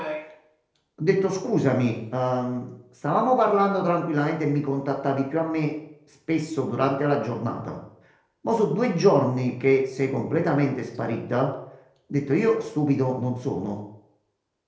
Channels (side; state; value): both; identical; correlation 1.00